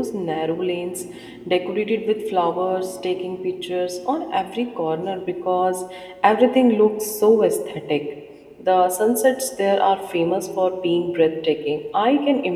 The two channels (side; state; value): both; identical; correlation 1.00